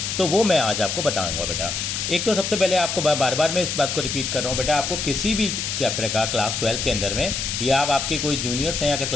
तो वो मैं आज आपको बताऊंगा बेटा। एक तो सबसे पहले आपको बार बार मैं इस बात को रिपीट कर रहा हूँ बेटा, आपको किसी भी चैप्टर का क्लास 12 के अंदर में या आप आपके कोई जूनियर्स हैं या अगर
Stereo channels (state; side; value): noise; left; hiss, 2 dB below the sound